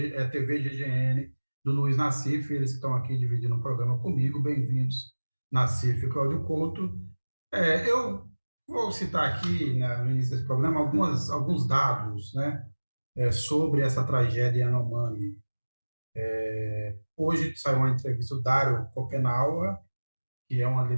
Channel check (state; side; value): inverted; both; correlation -1.00